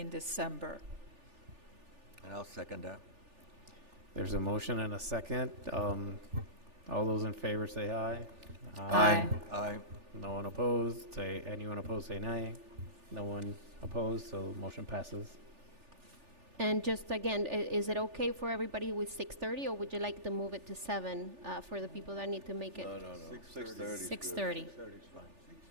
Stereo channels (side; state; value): left; late; 3.4 ms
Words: December. And I'll second that. There's a motion and a second. All those in favor say aye. Aye. Aye. No one opposed, say, anyone opposed, say nay. No one opposed, so motion passes. And just again, is it okay for everybody with 6:30, or would you like to move it to 7 for the people that need to make it? No, no, no. 6:30. 6:30. 6:30 is fine.